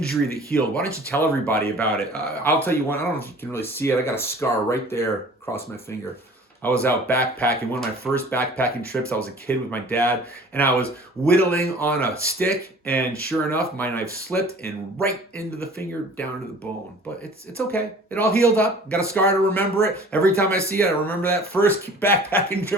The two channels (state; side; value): normal; both; correlation 0.47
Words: that healed. Why don't you tell everybody about it? I'll tell you one. I don't know if you can really see it. I got a scar right there across my finger. I was out backpacking, one of my first backpacking trips. I was a kid with my dad, and I was whittling on a stick, and sure enough, my knife slipped and right into the finger, down to the bone. But it's okay. It all healed up. Got a scar to remember it. Every time I see it, I remember that first backpacking